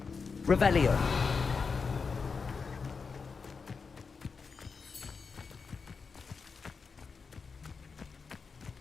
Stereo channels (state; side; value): quieter; right; 5.1 dB